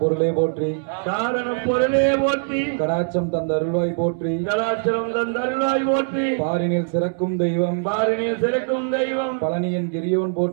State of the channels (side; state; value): left; silent; 64 dB below the other